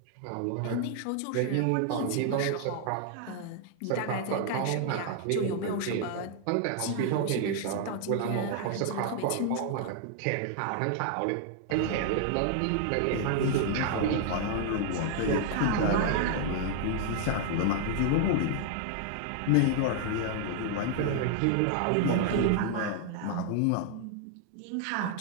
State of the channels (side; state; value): both; different; correlation 0.00